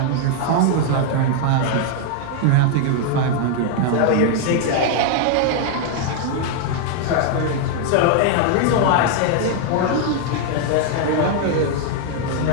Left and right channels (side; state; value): both; different; correlation 0.00